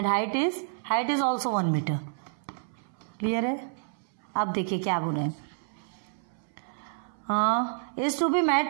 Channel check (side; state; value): left; silent; 59 dB below the other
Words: height is also 1 metre. Clear है। अब देखिए क्या बोल रहे हैं। Is to be